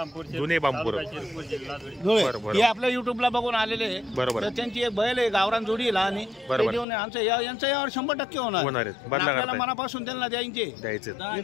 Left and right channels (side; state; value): right; drops out; at 6.9 s